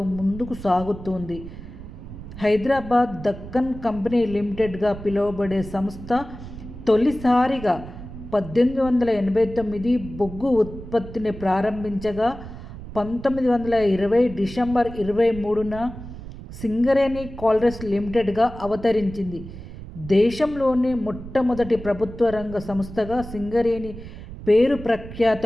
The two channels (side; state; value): right; noise; rumble, 13 dB below the sound